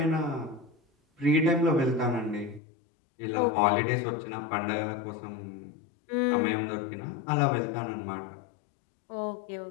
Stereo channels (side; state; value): right; drops out; at 2.6 s